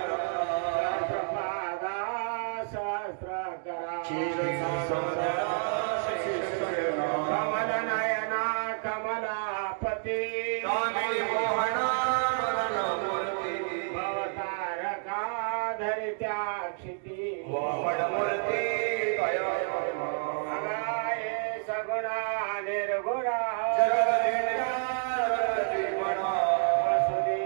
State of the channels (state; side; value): silent; left; 58 dB below the other